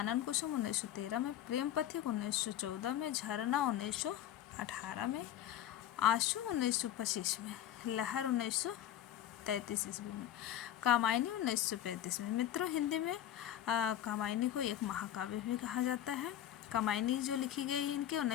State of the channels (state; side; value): quieter; right; 11.4 dB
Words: कुसुम 1913 में। प्रेम पथिक 1914 में। झरना 1918 में। आंसू 1925 में। लहर 1933 ईस्वी में। कामायनी 1935 में। मित्रों, हिंदी में कामायनी को एक महाकाव्य भी कहा जाता है। कामायनी जो लिखी गई इनके